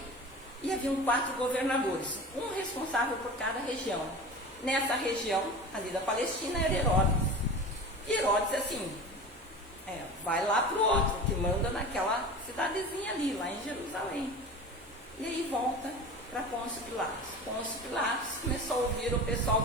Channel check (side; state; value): both; normal; correlation 0.34